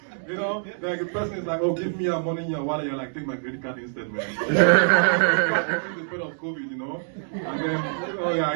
You know, like the person is like, oh, give me your money in your wallet. You're like, take my credit card instead, man. The spread of COVID, you know. And then, oh yeah,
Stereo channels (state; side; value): silent; left; digital silence